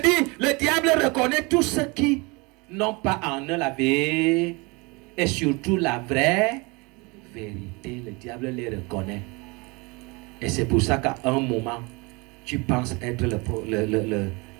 dis, le diable reconnaît tous ceux qui n'ont pas en eux la vérité et surtout la vraie vérité. Le diable les reconnaît. Et c'est pour ça qu'à un moment, tu penses être le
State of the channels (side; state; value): left; quieter; 27.2 dB